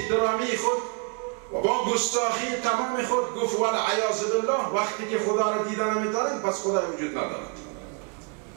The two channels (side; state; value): left; quieter; 35.2 dB